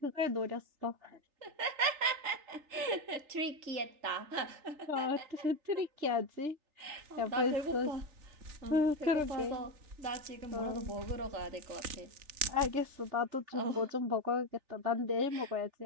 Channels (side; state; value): left; late; 3.4 ms